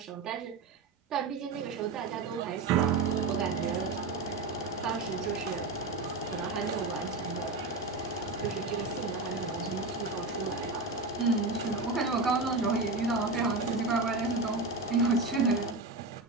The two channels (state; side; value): quieter; left; 3.5 dB